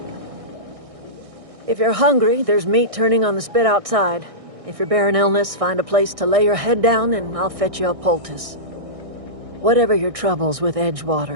If you're hungry, there's meat turning on the spit outside. If you're bearing illness, find a place to lay your head down and I'll fetch you a poultice. Whatever your troubles with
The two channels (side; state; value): left; late; 1.6 ms